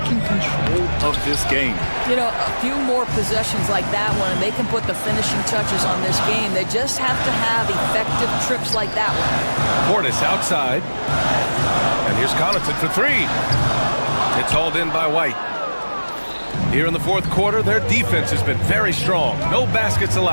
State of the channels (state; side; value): inverted; both; correlation -1.00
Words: control of this game. You know, a few more possessions like that one, and they can put the finishing touches on this game. They just have to have effective trips like that one. Portis outside. And here's Connaughton for 3. It's hauled in by White. Here in the 4th quarter, their defense has been very strong. No baskets